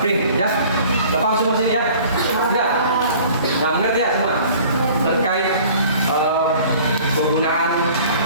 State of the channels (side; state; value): both; inverted; correlation -0.49